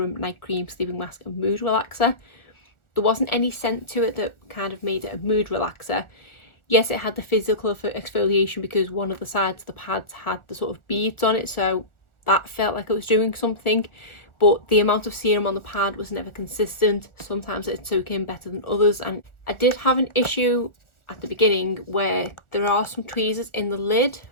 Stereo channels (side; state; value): right; late; 1.4 ms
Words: night cream, sleeping mask and mood relaxer. There wasn't any scent to it that kind of made it a mood relaxer. Yes, it had the physical for exfoliation because one of the sides of the pads had the sort of beads on it, so that felt like it was doing something, but the amount of serum on the pad was never consistent. Sometimes it'd soak in better than others, and I did have an issue at the beginning where there are some tweezers in the lid,